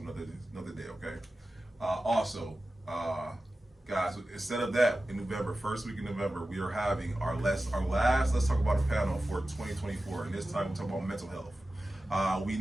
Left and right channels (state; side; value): normal; both; correlation 0.94